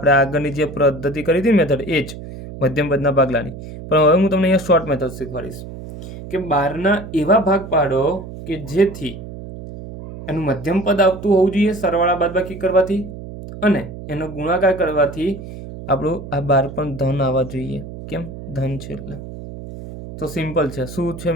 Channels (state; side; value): noise; right; hum, 12 dB below the sound